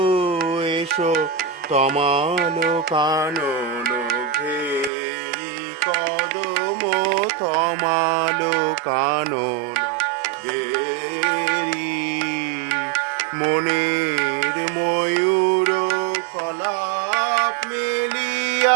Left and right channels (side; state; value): left; drops out; at 4.9 s